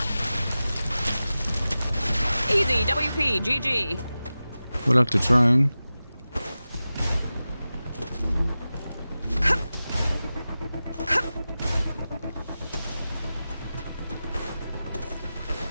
Easy, WP, GG. We'll have to drone.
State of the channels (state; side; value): inverted; both; correlation -0.95